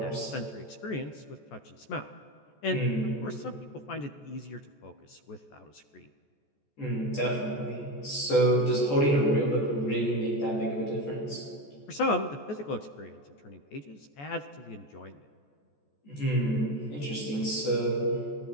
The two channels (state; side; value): late; right; 14 ms